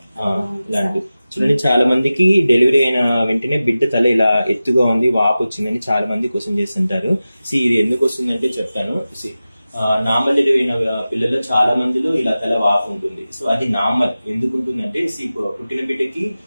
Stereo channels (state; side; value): inverted; both; correlation -0.95